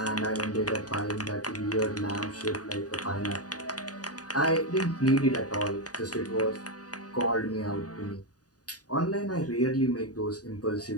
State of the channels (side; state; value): right; late; 0.68 ms